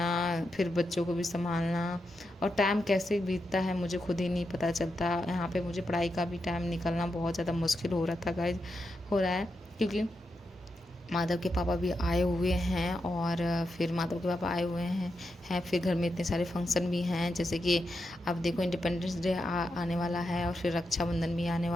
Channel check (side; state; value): both; normal; correlation 0.86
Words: फिर बच्चों को भी संभालना, और टाइम कैसे बीतता है मुझे खुद ही नहीं पता चलता। यहाँ पे मुझे पढ़ाई का भी टाइम निकलना बहुत ज़्यादा मुश्किल हो रहा था गाइस, हो रहा है, क्योंकि माधव के पापा भी आए हुए हैं, और फिर माधव के पापा आए हुए हैं फिर घर में इतने सारे फंक्शन भी हैं, जैसे कि अब देखो इंडिपेंडेंस डे आने वाला है, और फिर रक्षाबंधन भी आने